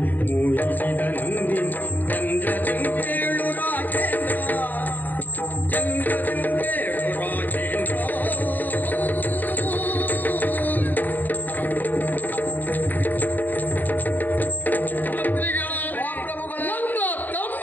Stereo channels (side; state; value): right; late; 0.087 ms